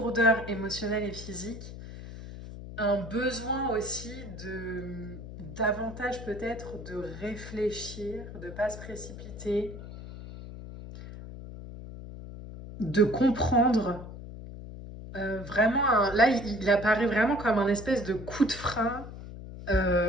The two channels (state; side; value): noise; left; hum, 12 dB below the sound